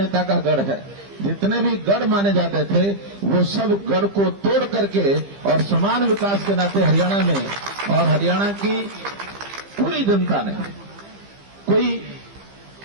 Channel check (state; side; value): late; left; 15 ms